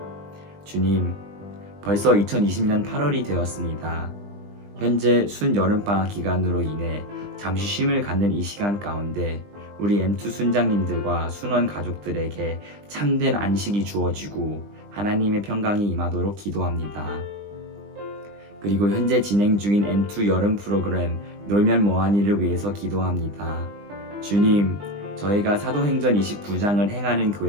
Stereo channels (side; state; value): left; late; 20 ms